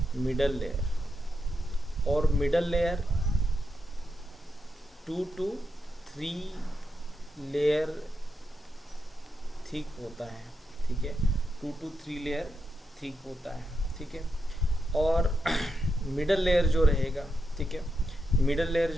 मिडल लेयर। और middle layer 2 to 3 layer thick होता है, ठीक है, 2 to 3 लेयर थिक होता है, ठीक है। और मिडल लेयर जो रहेगा, ठीक है, मिडल लेयर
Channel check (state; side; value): normal; both; correlation 0.85